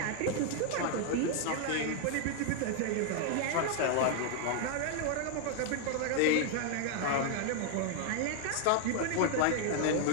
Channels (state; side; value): different; both; correlation 0.00